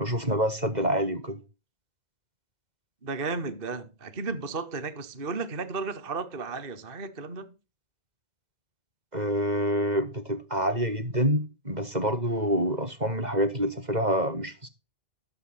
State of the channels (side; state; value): left; late; 2.0 ms